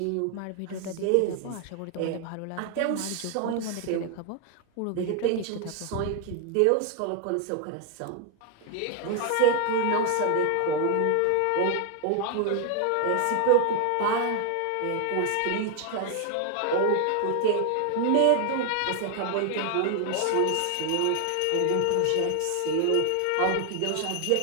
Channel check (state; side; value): different; both; correlation 0.00